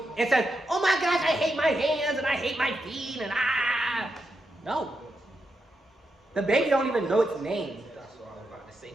and says, oh my gosh, I hate my hands and I hate my feet and ah. No. The baby don't even know its name. That's what I was about to say.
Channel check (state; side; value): normal; both; correlation 0.85